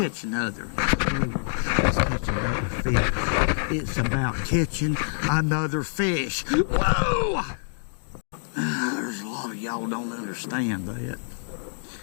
another. Let's catch another fish. It's about catching another fish. Whoa! There's a lot of y'all don't understand that.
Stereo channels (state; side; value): silent; right; digital silence